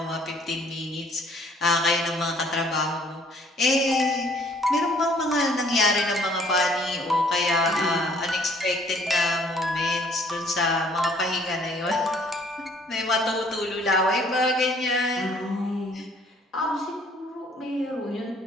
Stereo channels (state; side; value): normal; both; correlation 0.60